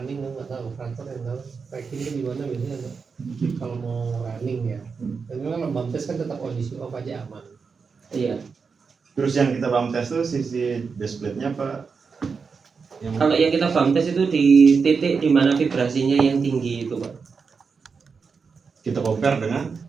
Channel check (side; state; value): left; quieter; 5.3 dB